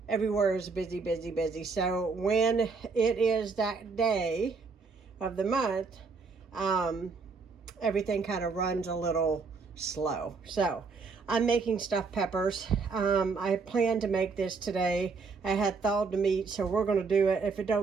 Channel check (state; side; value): quieter; left; 4.7 dB